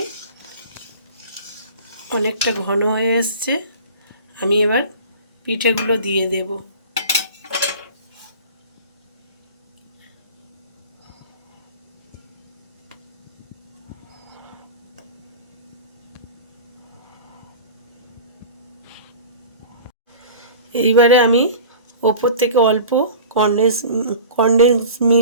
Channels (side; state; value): both; inverted; correlation -0.38